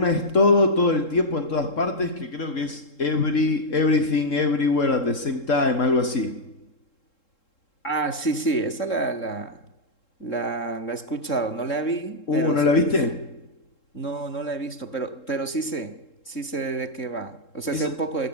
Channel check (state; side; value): late; right; 3.7 ms